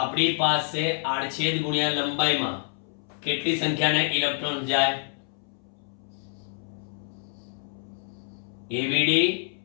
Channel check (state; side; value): silent; right; 60 dB below the other